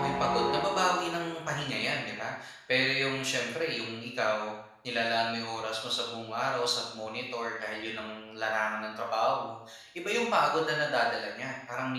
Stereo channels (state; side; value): identical; both; correlation 1.00